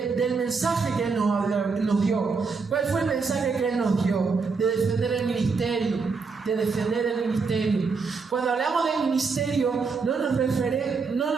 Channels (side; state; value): left; quieter; 4.8 dB